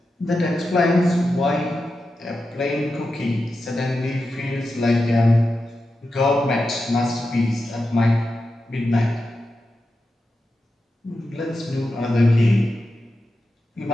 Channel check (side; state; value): both; normal; correlation 0.90